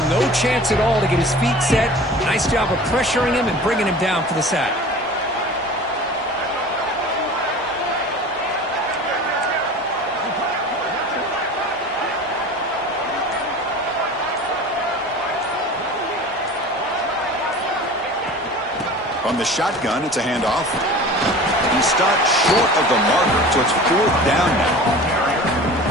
no chance at all to get his feet set. Nice job of pressuring him and bringing him down for the sack. From the shotgun, it's a handoff. He's stopped short of the marker, so it's 4th down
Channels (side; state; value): both; normal; correlation 0.39